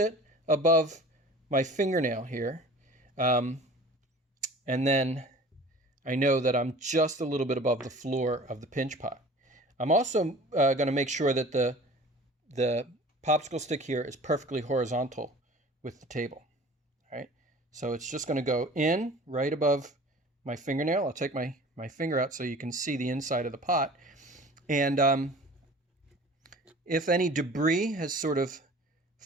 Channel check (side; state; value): both; normal; correlation 0.43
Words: above my fingernail here. And then I know that I'm just a little bit above the floor of the pinch pot. I'm also going to make sure that the popsicle stick here is perfectly horizontal with the table. All right, so it's just going to go in right above my fingernail. I'll take my finger out so you can see the inside of the pot. And if any debris has sort of